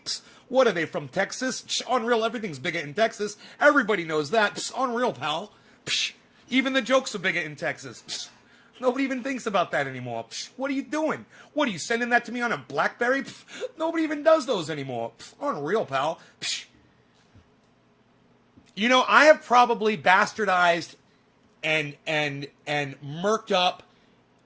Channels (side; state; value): both; identical; correlation 1.00